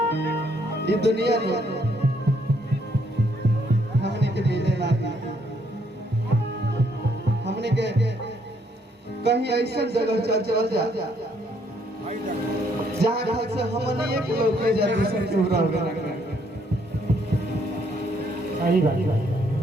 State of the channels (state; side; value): normal; both; correlation 0.70